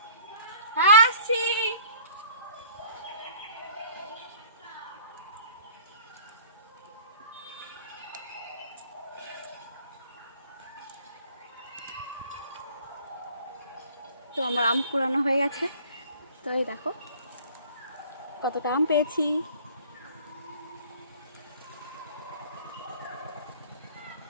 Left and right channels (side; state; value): both; inverted; correlation -0.51